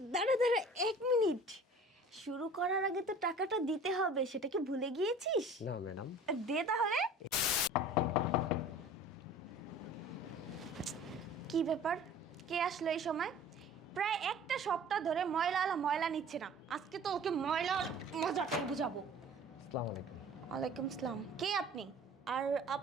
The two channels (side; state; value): both; normal; correlation 0.45